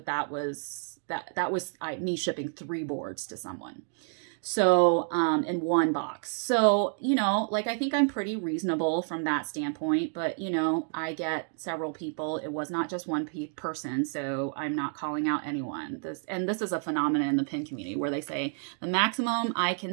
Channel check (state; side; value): silent; left; 58 dB below the other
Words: that was me shipping 3 boards to someone. So, in one box. So, I think I'm pretty reasonable from that standpoint, but, I get several people. It was not just one person, so I'm not calling out anyone. This is a phenomenon in the pin community where they say the maximum I